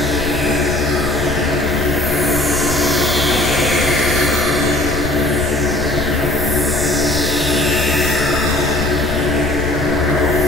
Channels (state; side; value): noise; left; rumble, 7 dB below the sound